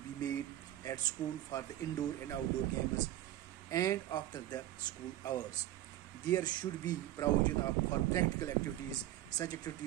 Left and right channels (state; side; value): quieter; left; 13.9 dB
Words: be made at school for the indoor and outdoor games and after the school hours. There should be provision for practical activities. Such